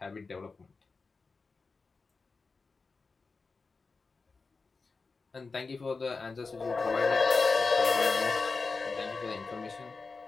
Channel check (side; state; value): right; quieter; 4.2 dB